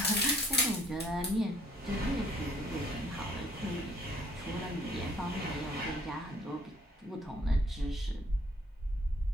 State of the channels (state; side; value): normal; both; correlation 0.62